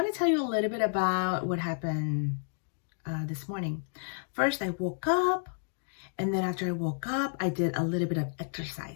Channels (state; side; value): silent; right; digital silence